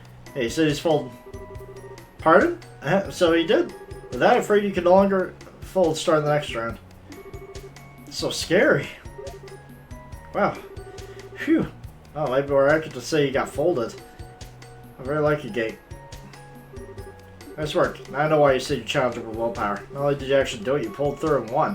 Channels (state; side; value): identical; both; correlation 1.00